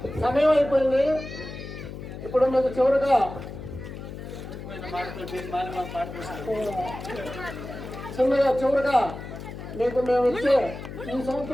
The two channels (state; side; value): noise; left; hum, 10 dB below the sound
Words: ఇప్పుడు మీకు చివరిగా మీకు మేము ఇచ్చే ఈ